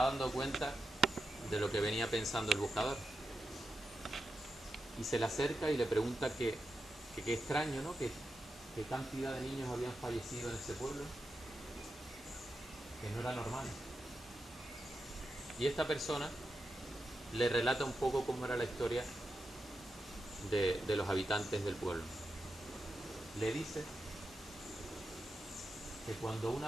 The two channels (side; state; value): both; normal; correlation 0.88